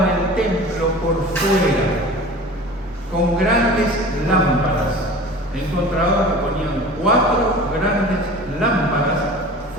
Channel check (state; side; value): normal; both; correlation 0.39